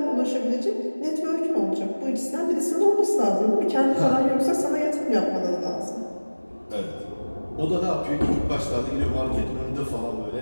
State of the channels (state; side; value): inverted; both; correlation -1.00